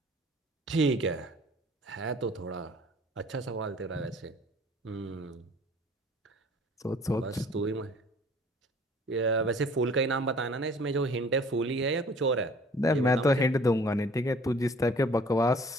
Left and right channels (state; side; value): normal; both; correlation 0.53